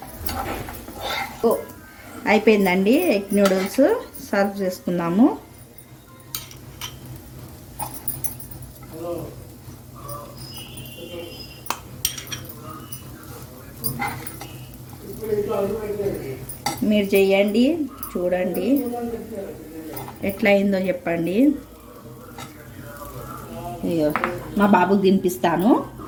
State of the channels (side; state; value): both; identical; correlation 1.00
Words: అయిపోయిందండి ఎగ్ నూడిల్స్. సర్వ్ చేసుకుందాము. మీరు చేయండి, చూడండి ఎట్లా అయిందో చెప్పండి. అయ్యో మా బాబుకి తినిపిస్తాను.